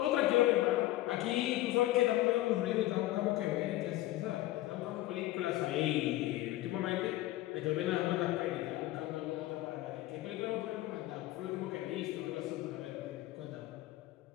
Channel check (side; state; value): right; quieter; 16.4 dB